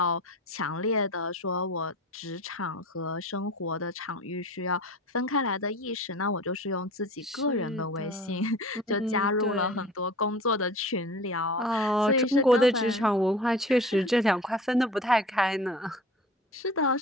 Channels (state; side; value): normal; both; correlation 0.40